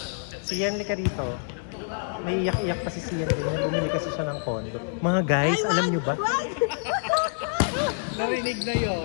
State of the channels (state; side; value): silent; right; digital silence